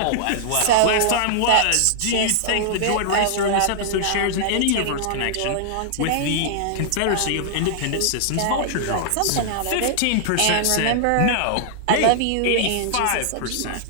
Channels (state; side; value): different; both; correlation -0.01